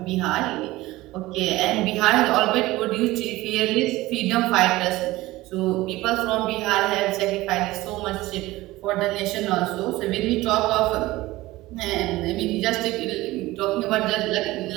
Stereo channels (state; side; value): quieter; left; 18.5 dB